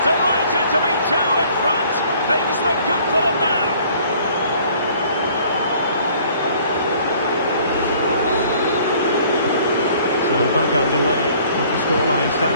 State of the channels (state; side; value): inverted; both; correlation -0.56